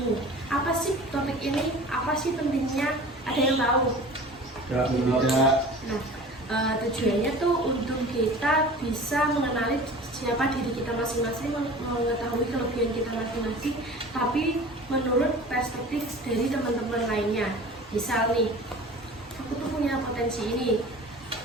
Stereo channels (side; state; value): both; normal; correlation 0.40